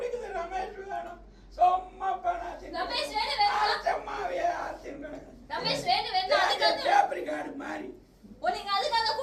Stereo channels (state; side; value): identical; both; correlation 1.00